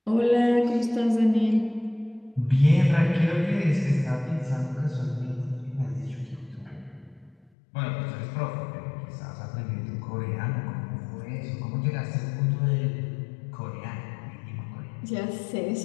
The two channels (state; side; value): drops out; right; at 7.5 s